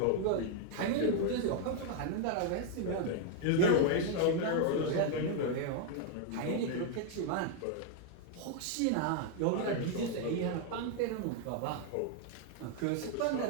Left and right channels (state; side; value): different; both; correlation 0.00